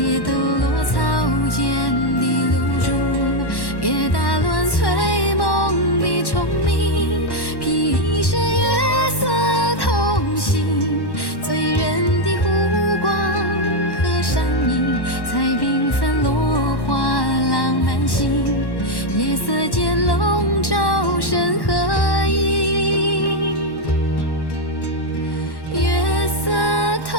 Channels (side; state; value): right; late; 1.1 ms